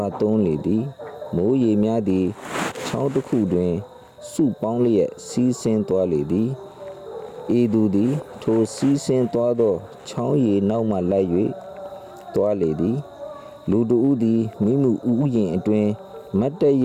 ာသွန်းလေသည်မိုးရေများသည်ချောင်းတစ်ခုတွင်စုပေါင်းလျက်စီးဆင်းသွားလေသည်ဤသူသည်ထိုစီးဆင်းသွားသောချောင်းရည်နောက်မှလိုက်၍သွားလေသည်လူတဦးသည်မိမှုဥယျာဉ်အတွင်မတ်တရ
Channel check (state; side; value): identical; both; correlation 1.00